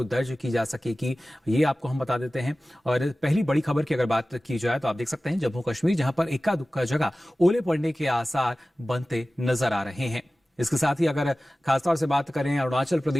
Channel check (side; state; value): both; normal; correlation 0.97